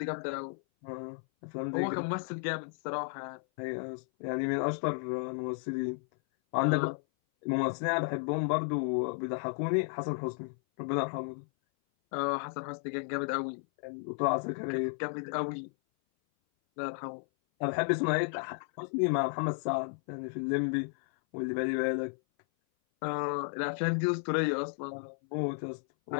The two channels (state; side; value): silent; right; 56 dB below the other